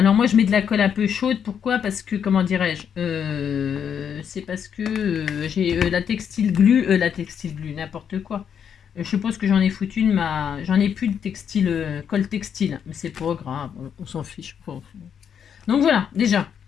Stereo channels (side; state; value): right; quieter; 8.0 dB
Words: moi, je mets de la colle un peu chaude. Pourquoi? Parce que, comment dirais-je? C'est parce que j'ai la textile glue, n'importe quoi. Je suppose que j'en ai foutu j'en ai plus de textile, colle textile, mais c'est pas grave, on s'en fiche. Donc voilà, déjà,